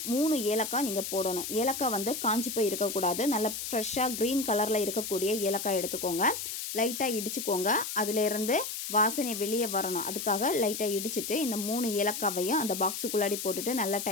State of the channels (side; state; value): left; noise; hiss, 5 dB below the sound